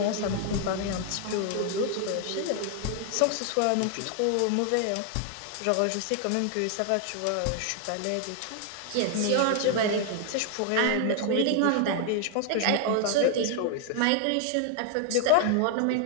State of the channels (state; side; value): different; both; correlation 0.00